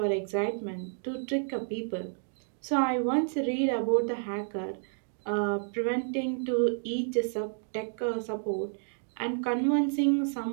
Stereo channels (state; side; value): silent; left; digital silence